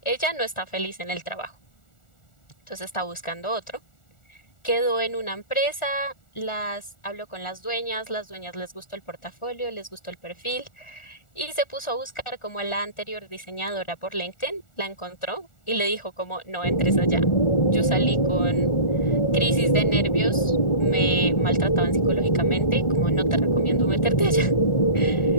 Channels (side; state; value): right; late; 1.4 ms